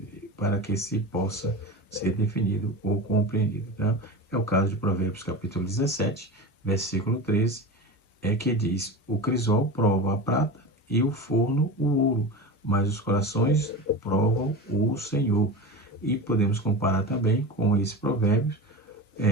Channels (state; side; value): normal; both; correlation 0.27